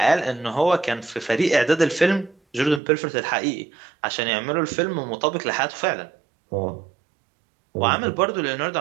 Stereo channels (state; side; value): drops out; left; at 2.8 s